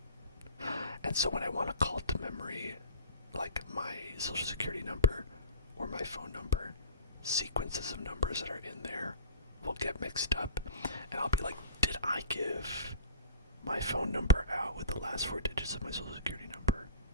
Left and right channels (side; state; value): both; inverted; correlation -0.39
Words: And so when I want to call it to memory, like my social security number or my phone number, sequences of numbers that are in there will get mixed up, and I'll be like, did I give my phone number out with the last 4 digits of my social security number